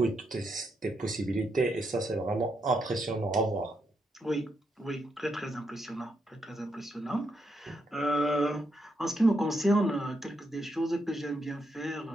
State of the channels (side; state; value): both; normal; correlation 0.81